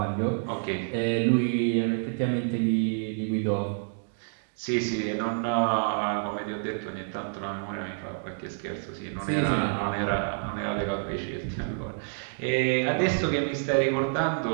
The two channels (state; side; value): silent; left; digital silence